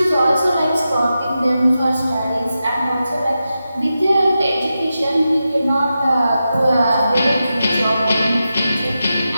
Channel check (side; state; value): both; inverted; correlation -0.90